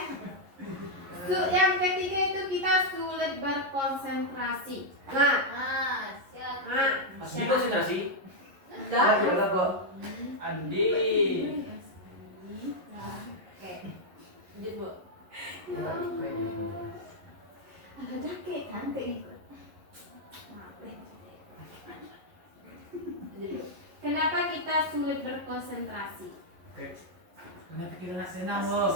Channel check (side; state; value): left; late; 11 ms